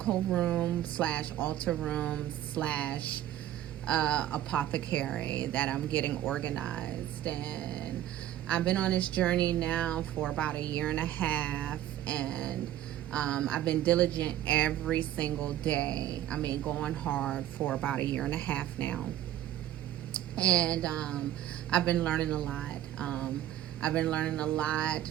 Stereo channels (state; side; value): quieter; left; 12.5 dB